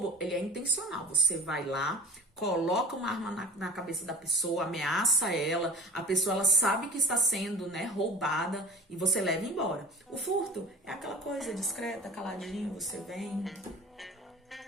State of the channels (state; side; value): normal; both; correlation 0.42